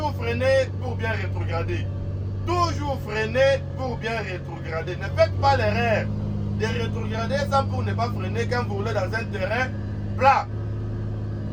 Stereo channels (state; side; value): identical; both; correlation 1.00